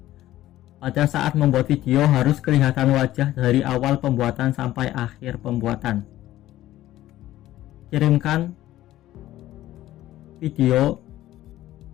Pada saat membuat video harus kelihatan wajah dari awal pembuatan sampai akhir pembuatan. Kirimkan video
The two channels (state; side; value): quieter; right; 14.6 dB